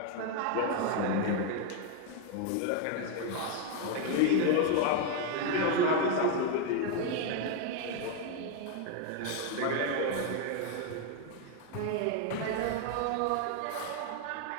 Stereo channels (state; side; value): different; both; correlation 0.01